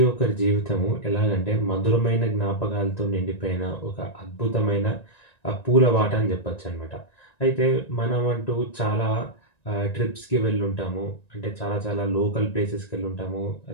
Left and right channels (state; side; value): late; right; 1.9 ms